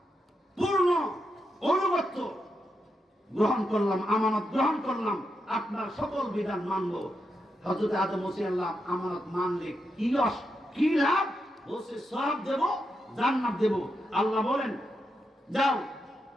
পূর্ণ অনুগত্য গ্রহণ করলাম, আমানত গ্রহণ করলাম, আপনার সকল বিধান মানব। হযরত আদম বলছে আল্লাহ আমানত মানলে কি লাভ? বলছে সওয়াব দেব, জান্নাত দেব। আল্লাহ বলেন যাও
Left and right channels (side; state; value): both; normal; correlation 0.85